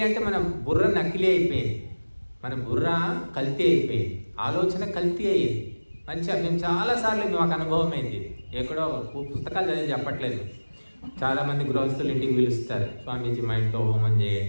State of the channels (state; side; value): inverted; both; correlation -1.00